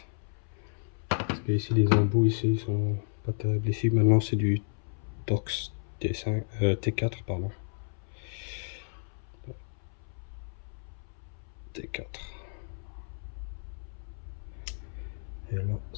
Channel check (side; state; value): right; silent; 57 dB below the other